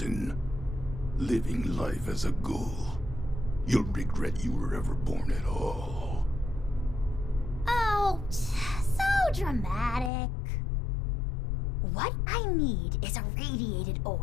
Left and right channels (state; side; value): drops out; right; at 10.1 s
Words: Living life as a ghoul. You'll regret you were ever born at all. Oh, so dramatic. What I need is a radiated